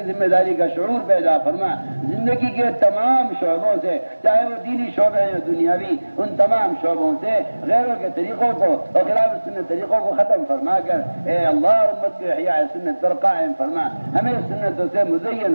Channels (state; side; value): inverted; both; correlation -1.00